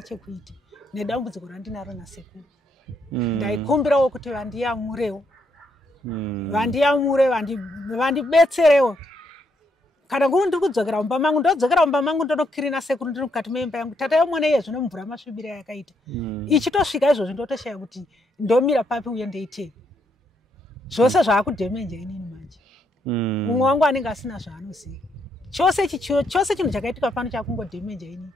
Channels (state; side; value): normal; both; correlation 0.76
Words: nedambudziko randinaro nasekuru. Ndaikumbirawo kuti vandiyamurewo, vandibetserewo. Kana nguri ndiri kudzokera mumba mangu, ndodzokera mumba mangu ndonokirina sekuru ndiri mukati meimba yangu. Tata yomwene iye zvino mvura masvibira yakaita. Ichitosvika izvozvi ndotoshaya kuti ndomira papi uye ndeitei. Zvose zvaakudhemenja inini manje. Mumwe wangu anenge asina zvaanoziva. Chose chinhu chakaitika pano chakungodhemenja inini.